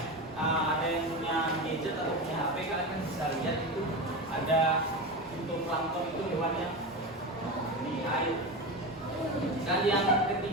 ada yang punya gadget atau punya HP, kalian kan bisa lihat itu ada fitoplankton, itu hewan yang di air. Dan yang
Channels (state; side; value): normal; both; correlation 0.22